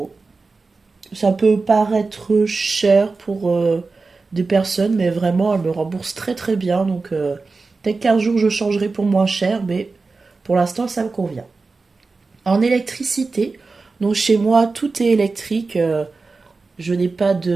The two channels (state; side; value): quieter; left; 4.0 dB